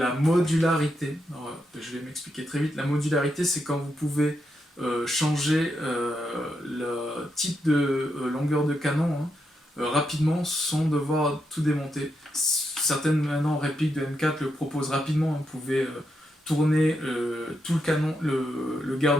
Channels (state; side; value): normal; both; correlation 0.83